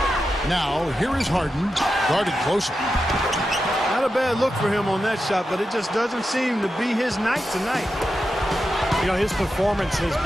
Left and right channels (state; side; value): normal; both; correlation 0.89